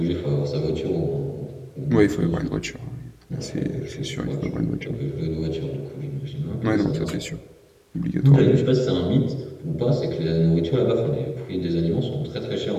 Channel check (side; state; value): both; identical; correlation 1.00